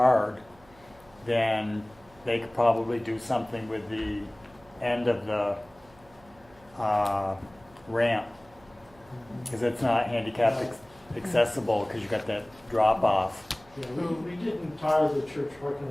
then they could probably do something with the end of the ramp. Because it's not handicap accessible because you got that drop off. Yeah, we didn't tar the church parking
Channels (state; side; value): noise; right; hum, 27 dB below the sound